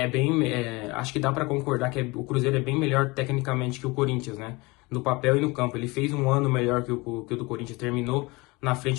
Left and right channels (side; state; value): right; quieter; 24.5 dB